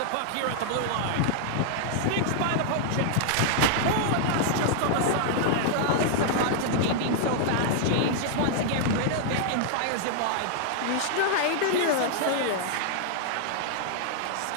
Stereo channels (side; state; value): both; different; correlation -0.01